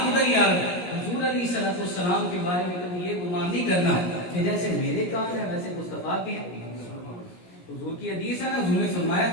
ادھر ہی آ رہا ہے. حضور علیہ السلام کے بارے میں کبھی یہ گمان نہیں کرنا کہ جیسے میرے کان ہیں ویسے مصطفیٰ کے ہیں. حضور کی حدیث ہے نا, حضور نے فرمایا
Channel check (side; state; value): right; late; 17 ms